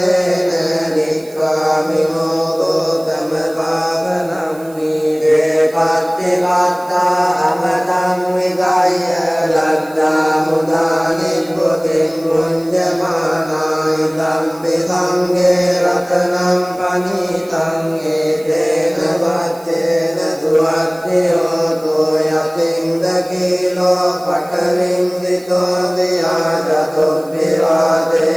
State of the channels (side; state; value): right; noise; hiss, 24 dB below the sound